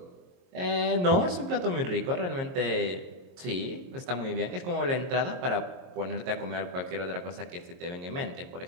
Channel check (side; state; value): left; late; 22 ms